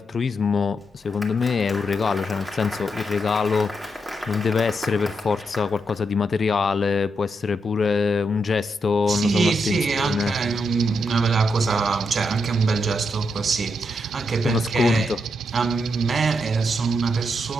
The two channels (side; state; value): both; normal; correlation 0.82